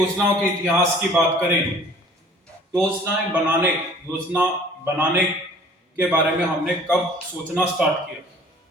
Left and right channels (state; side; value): normal; both; correlation 0.51